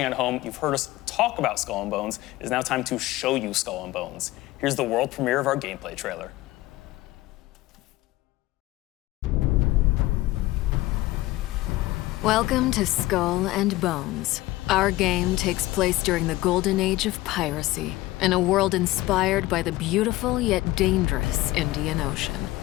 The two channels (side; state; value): right; quieter; 17.8 dB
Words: at home, you've heard us talk about Skull and Bones. It is now time to show you Skull and Bones. Here's the world premiere of our gameplay trailer. Welcome to Skull and Bones. Our game takes place during the golden age of piracy, in a world inspired by the beautiful yet dangerous Indian Ocean.